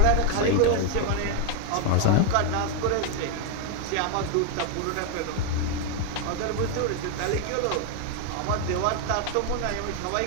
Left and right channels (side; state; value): both; different; correlation 0.01